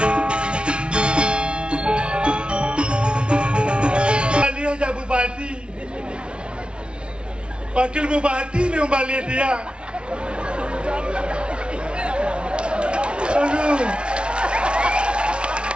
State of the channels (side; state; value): left; late; 0.058 ms